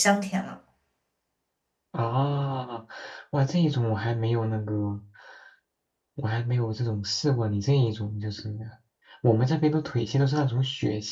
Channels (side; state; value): both; identical; correlation 1.00